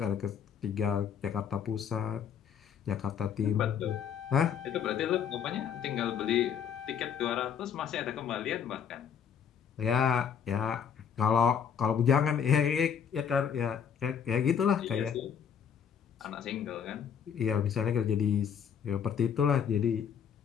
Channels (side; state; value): right; quieter; 7.8 dB